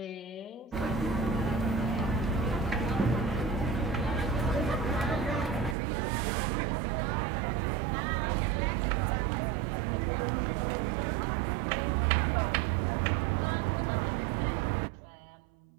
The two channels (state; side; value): drops out; left; at 5.8 s